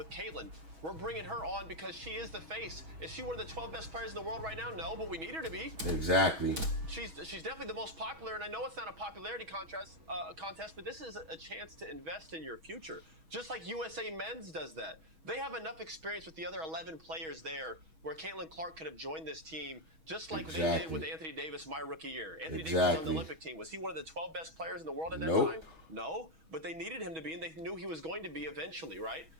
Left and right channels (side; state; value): left; late; 6.2 ms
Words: Caitlin. We're bringing her on because she is the face. Is she one of the 12 best players in the world right now? No, but we need her to be. Exactly. She's definitely the most popular, and I know it's not a popularity contest, but this is a chance to invest in your future. Just like USA Men's does that. They have enough experience with the other 11 players there where Caitlin Clark could have joined this team just like they did with Anthony Davis my rookie year. Anthony Davis was on the Olympic team. Was he one of the 12 best players in the world at that time? No, but they needed him to be, and they knew he was going to be eventually, right?